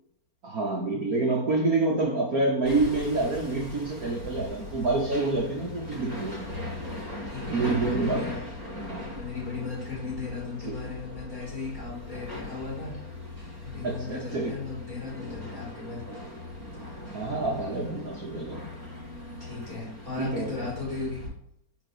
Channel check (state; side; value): late; left; 4.4 ms